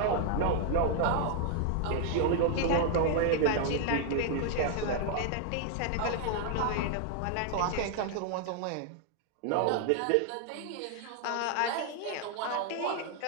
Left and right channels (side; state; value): both; different; correlation 0.00